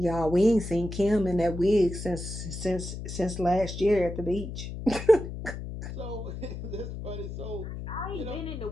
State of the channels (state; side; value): noise; left; hum, 8 dB below the sound